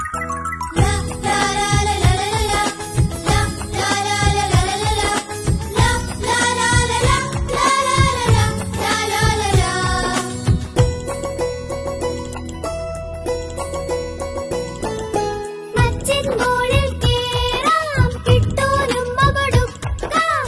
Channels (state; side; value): identical; both; correlation 1.00